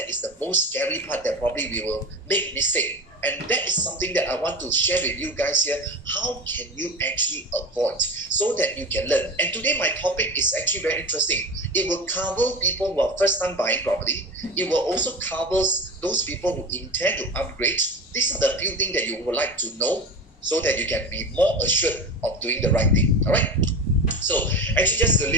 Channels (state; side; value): normal; both; correlation 0.29